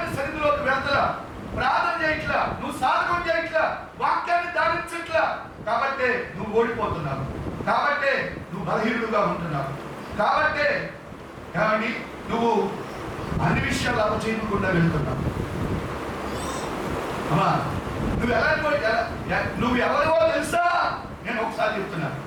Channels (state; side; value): identical; both; correlation 1.00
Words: సన్నిధిలోకి వెళ్తలా, ప్రార్థన చేయట్లా, నువ్వు సాధకం చేయట్లా, వాక్యాన్ని ధారించట్లా, కాబట్టే నువ్వు ఓడిపోతున్నావు, కాబట్టే నువ్వు బలహీనుడుగా ఉంటున్నావు, కాబట్టే నువ్వు అన్ని విషయాలు అపచేయకుండా వెళ్తున్నావు. అమ్మా నువ్వు ఎవరో తెలుసా? నేను ఒకసారి చెప్తున్నాను,